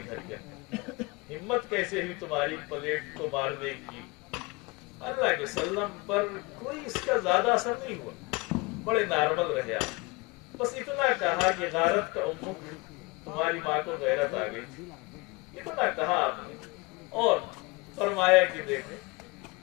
घर के अंदर। हिम्मत कैसे हुई तुम्हारी प्लेट को मारने की। अल्लाह के वसल्लम पर कोई इसका ज्यादा असर नहीं हुआ, बड़े नॉर्मल रहे आप। बस इतना कहा कि गारत का उम्मुक, तुम्हारी माँ को गैरत आ गई थी, इतना कहा आपने, और फरमाया कि देखो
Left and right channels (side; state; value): right; quieter; 25.3 dB